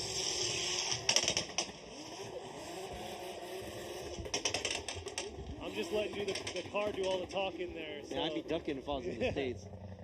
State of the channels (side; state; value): both; identical; correlation 1.00